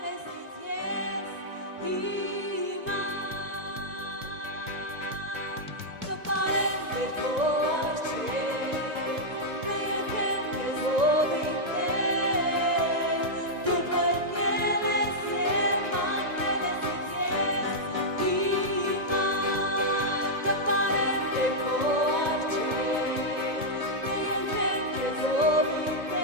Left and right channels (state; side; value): late; left; 1.9 ms